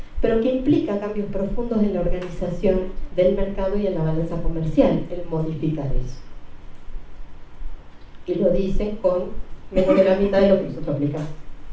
pero que implica cambios profundos en la organización del mercado y en la balanza comercial, el modificar eso. Y lo dicen con menos de la mitad de lo que nosotros aplicamos.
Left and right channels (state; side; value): identical; both; correlation 1.00